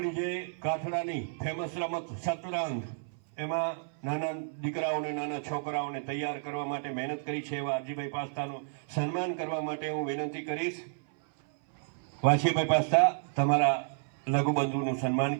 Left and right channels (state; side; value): silent; left; 56 dB below the other